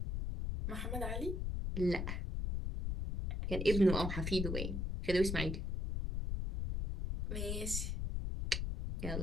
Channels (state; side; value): noise; left; rumble, 1 dB below the sound